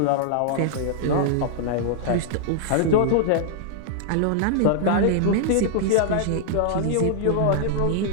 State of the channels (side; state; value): both; different; correlation -0.01